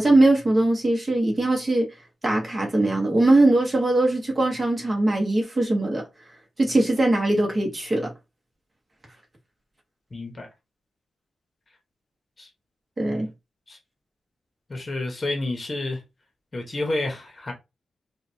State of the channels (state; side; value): normal; both; correlation 0.95